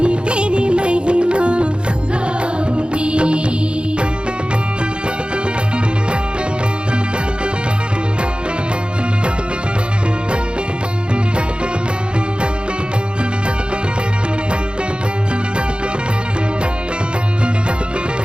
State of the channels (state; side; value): late; left; 0.055 ms